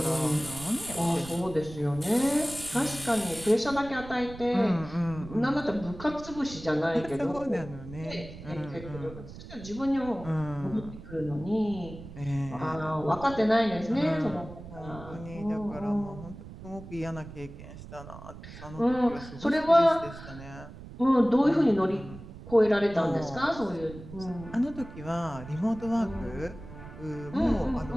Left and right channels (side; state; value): right; noise; rumble, 14 dB below the sound